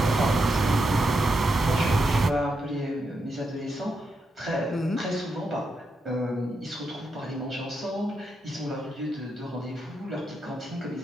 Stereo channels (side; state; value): both; normal; correlation 0.84